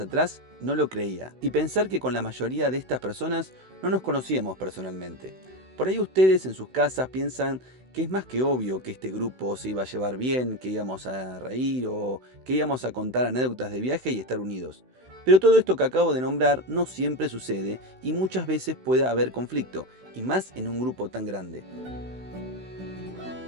no lo creía. Y pensar que con la mayoría de estas personas no nos conocíamos personalmente. Por ahí ustedes en sus casas piensan que es más que obvio que este grupo se iba a llevar bien, que íbamos a reír o que íbamos a contar anécdotas de viaje y estar unidos. Pero todo esto que acabo de nombrar no siempre sucede y muchas veces puede haber conflicto, y más en un grupo tan grande.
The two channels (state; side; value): late; left; 16 ms